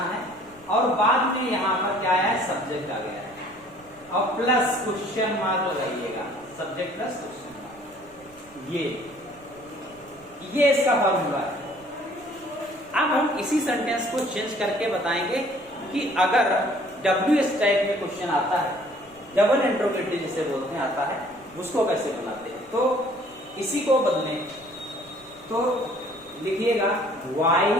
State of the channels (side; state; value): right; noise; rumble, 28 dB below the sound